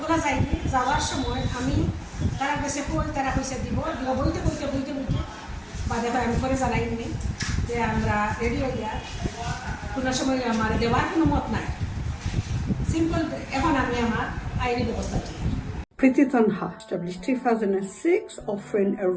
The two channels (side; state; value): both; identical; correlation 1.00